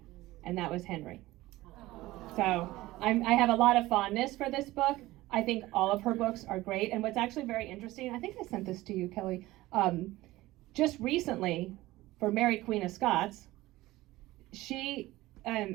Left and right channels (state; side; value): quieter; left; 17.9 dB